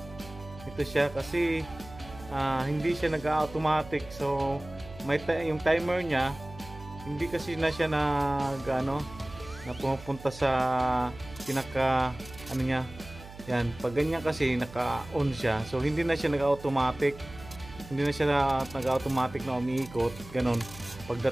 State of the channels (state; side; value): noise; right; hum, 16 dB below the sound